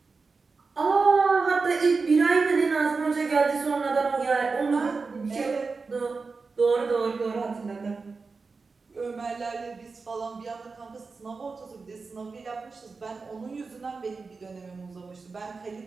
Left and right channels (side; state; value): left; quieter; 4.4 dB